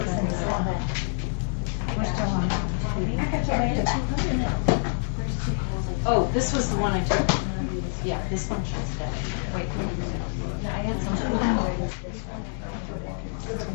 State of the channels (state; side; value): silent; right; digital silence